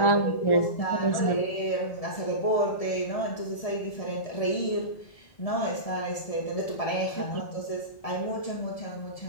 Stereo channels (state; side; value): late; right; 1.7 ms